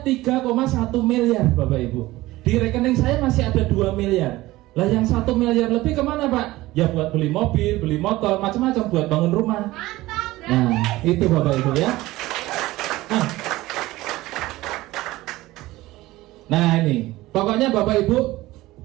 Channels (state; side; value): quieter; left; 18.0 dB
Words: miliar Bapak Ibu. Di rekening saya masih ada 2 miliar. Lah yang 1 miliar lebih kemana Pak? Ya buat beli mobil, beli motor, macam-macam, buat bangun rumah. Nah itu Bapak Ibu ya. Nah ini, pokoknya Bapak Ibu